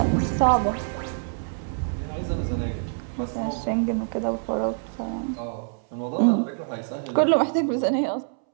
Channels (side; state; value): left; silent; 61 dB below the other